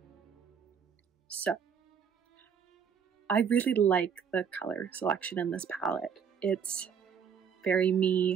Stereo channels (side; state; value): left; quieter; 7.2 dB